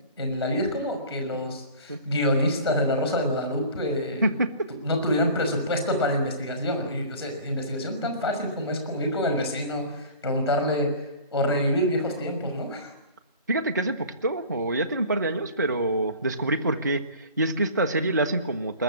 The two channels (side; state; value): both; inverted; correlation -0.42